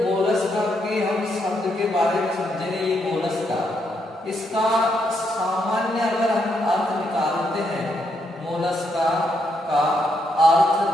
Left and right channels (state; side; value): normal; both; correlation 0.78